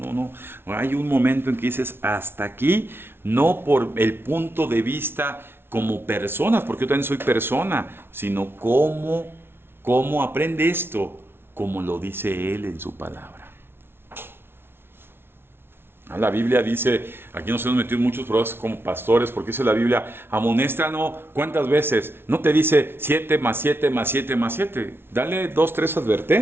Hay un momento en que dices, hasta aquí, no por el punto de vista como personas, porque yo también soy persona, sino cómo aprende esto, como lo dice Él en su palabra. La Biblia dice, aquí nos hemos metido en muchos problemas como pastores, porque dice la Biblia, amonéstanos, ¿cuántas veces? No te dice 7 más 7 más 7 más 7. Dale 2, 3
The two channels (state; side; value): late; left; 0.11 ms